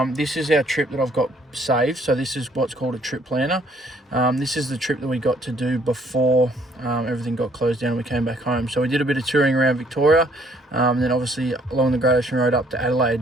This is our trip that I've got saved. So this is what's called a trip planner. This is the trip that we got to do before everything got closed down and we came back home. So we did a bit of touring around Victoria, and then obviously along the Great Ocean Road up to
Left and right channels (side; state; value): both; normal; correlation 0.63